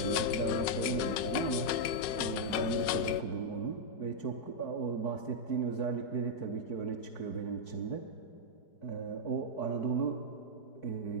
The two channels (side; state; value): right; late; 5.4 ms